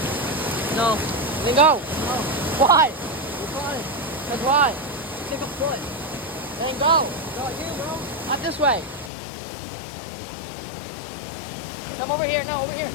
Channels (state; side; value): drops out; right; at 9.1 s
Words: No. Then go. No. Why? Why? That's why. Take a foot. Then go. Go here, bro. Not this way. Come over here. No, over here.